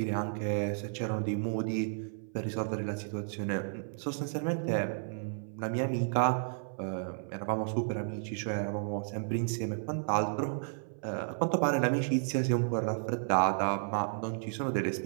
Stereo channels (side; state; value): left; silent; 56 dB below the other